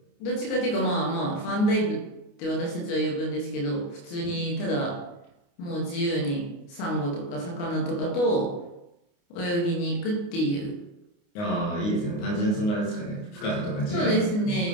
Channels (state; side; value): late; right; 29 ms